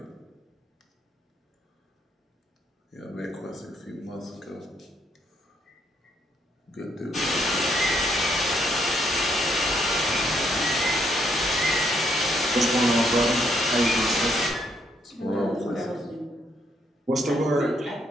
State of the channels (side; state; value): both; normal; correlation 0.72